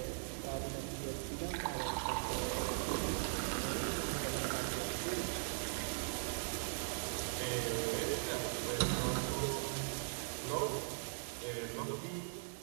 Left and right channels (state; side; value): silent; left; 51 dB below the other